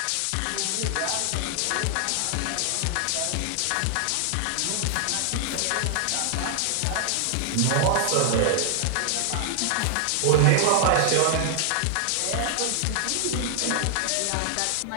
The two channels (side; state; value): both; different; correlation 0.00